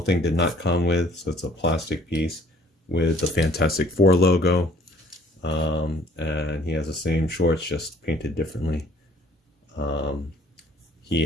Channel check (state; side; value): normal; both; correlation 0.58